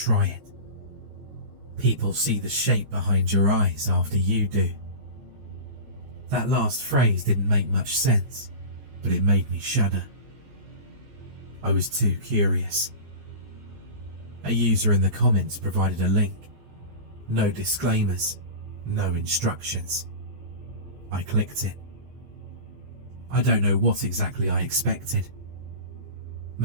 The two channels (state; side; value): late; left; 14 ms